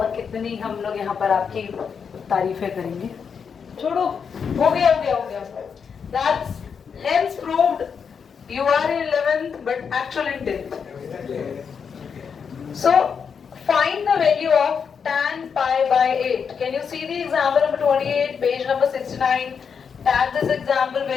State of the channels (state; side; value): quieter; right; 6.5 dB